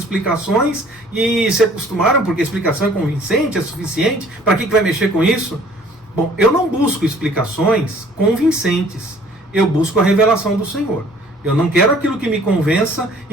e se acostumaram porque a explicação é convincente, é suficiente, para que vai mexer com isso? Bom, eu não busco explicações convincentes, eu busco a revelação do Senhor. Eu não quero aquilo que me convença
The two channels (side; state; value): both; normal; correlation 0.55